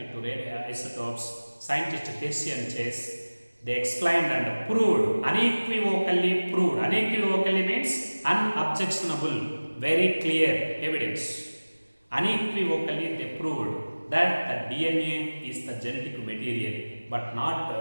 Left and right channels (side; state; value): both; inverted; correlation -1.00